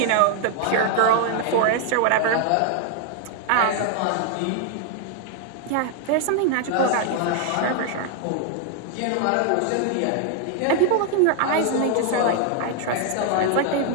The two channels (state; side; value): different; both; correlation 0.00